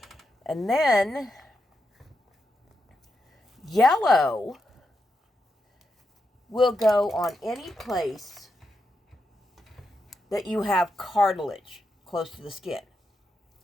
And then yellow will go on any place that you have cartilage close to the skin.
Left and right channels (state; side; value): normal; both; correlation 0.85